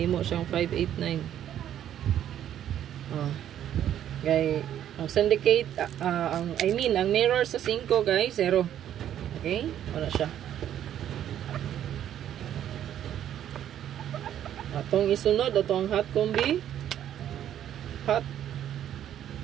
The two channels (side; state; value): left; quieter; 10.7 dB